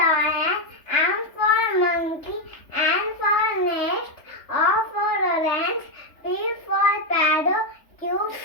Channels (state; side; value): late; right; 3.3 ms